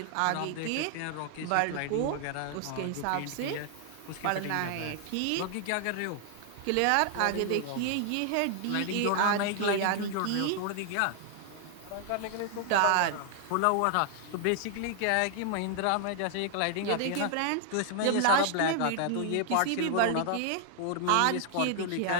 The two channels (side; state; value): both; different; correlation 0.00